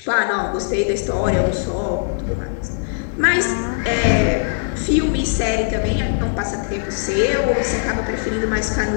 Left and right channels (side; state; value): right; silent; digital silence